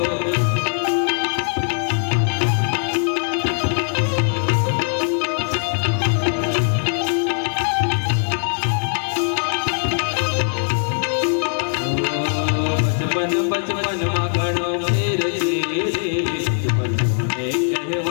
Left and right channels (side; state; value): right; silent; digital silence